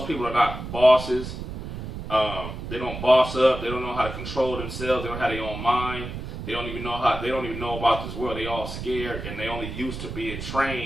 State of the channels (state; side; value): noise; right; rumble, 8 dB below the sound